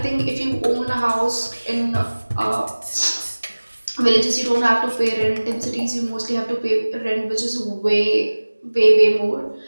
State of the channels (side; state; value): both; inverted; correlation -1.00